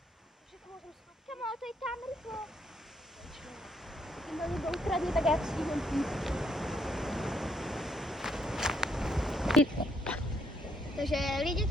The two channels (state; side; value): normal; both; correlation 0.72